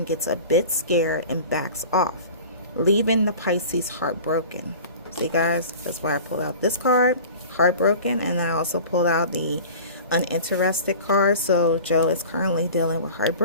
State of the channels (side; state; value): both; inverted; correlation -0.39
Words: gets a bit scared and backs off, leaving the Pisces heartbroken. See, guys, that's why I pulled out this card, heartbroken, and I also pulled out the uninterested card. So Joe is currently dealing with